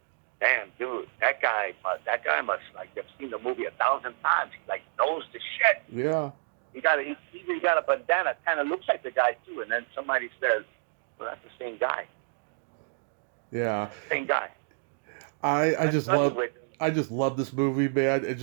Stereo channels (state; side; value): silent; left; digital silence